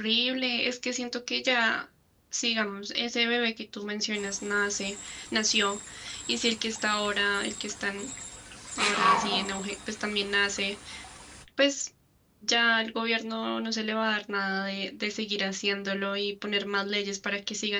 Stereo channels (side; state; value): both; identical; correlation 1.00